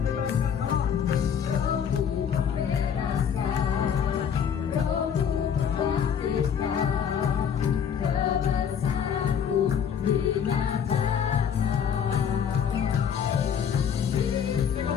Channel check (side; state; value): right; quieter; 7.9 dB